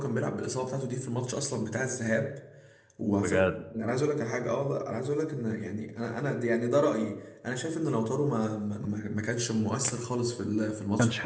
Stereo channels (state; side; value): identical; both; correlation 1.00